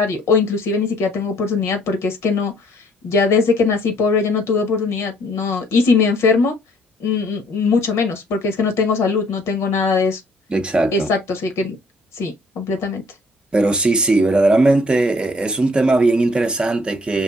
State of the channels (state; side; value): normal; both; correlation 0.61